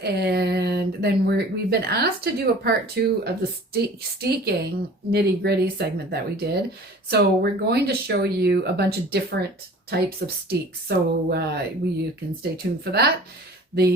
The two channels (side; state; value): both; normal; correlation 0.44